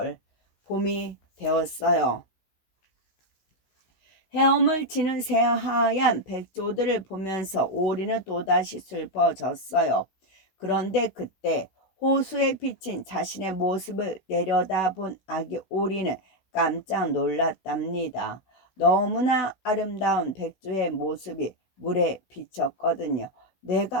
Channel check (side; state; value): right; late; 16 ms